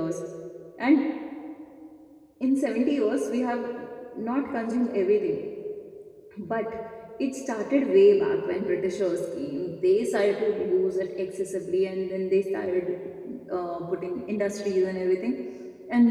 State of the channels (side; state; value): both; identical; correlation 1.00